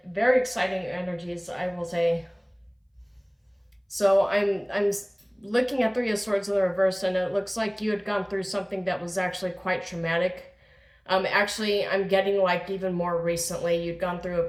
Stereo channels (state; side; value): identical; both; correlation 1.00